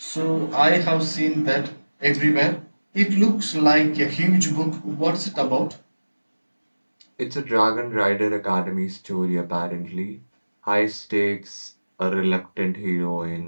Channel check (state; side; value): inverted; both; correlation -1.00